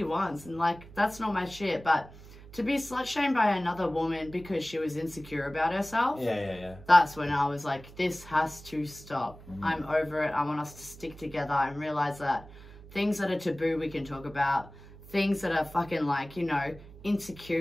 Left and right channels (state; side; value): noise; right; hum, 19 dB below the sound